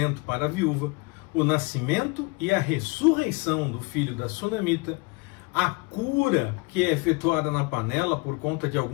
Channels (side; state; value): right; quieter; 27.1 dB